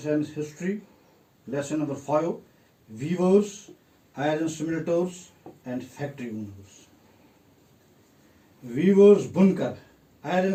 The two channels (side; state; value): both; identical; correlation 1.00